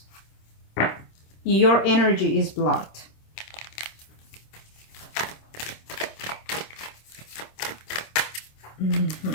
Your energy is blocked.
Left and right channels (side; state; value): right; late; 26 ms